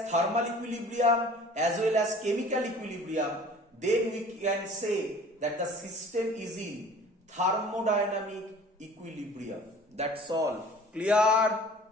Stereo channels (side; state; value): both; normal; correlation 0.47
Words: thermal equilibrium as well as chemical equilibrium, then we can say that the system is in thermodynamic equilibrium. That's all. Clear?